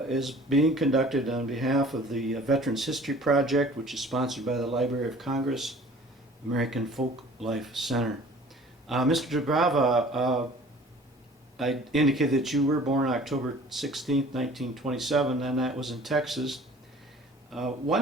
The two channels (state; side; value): normal; both; correlation 0.48